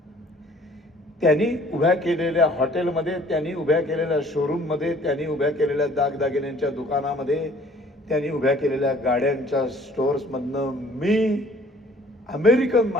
त्यांनी उभ्या केलेल्या हॉटेलमध्ये, त्यांनी उभ्या केलेल्या शोरूममध्ये, त्यांनी उभ्या केलेल्या दागदागिन्यांच्या दुकानामध्ये, त्यांनी उभ्या केलेल्या गाड्यांच्या स्टोअर्समधनं मी अमेरिकन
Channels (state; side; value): normal; both; correlation 0.55